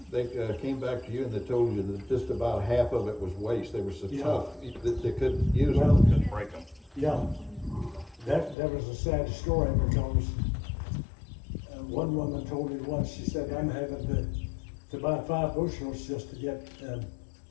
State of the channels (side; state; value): right; drops out; at 8.6 s